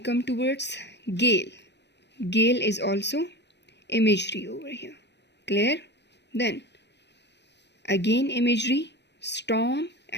towards gale. Gale is also imagery over here. Clear? Then again imagery, storm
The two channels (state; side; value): late; right; 0.50 ms